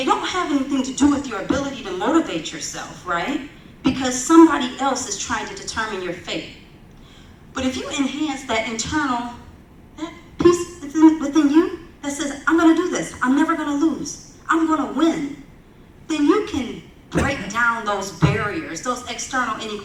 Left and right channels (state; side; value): identical; both; correlation 1.00